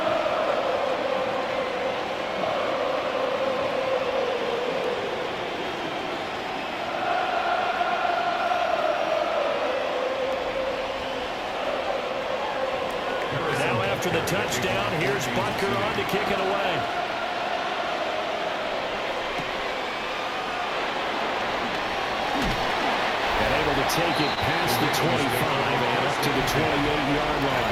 After the touchdown, here's Butker on to kick it away. And able to take it past the 25 and up to the 28-yard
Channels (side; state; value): both; identical; correlation 1.00